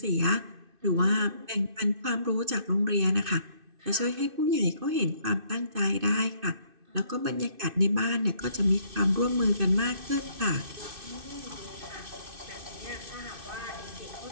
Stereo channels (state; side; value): late; left; 2.6 ms